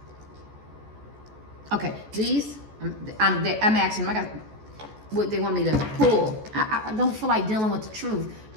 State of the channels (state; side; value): late; left; 14 ms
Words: Okay, these, I'm asking them. I got what they want me to pull. I don't feel like dealing with the truth.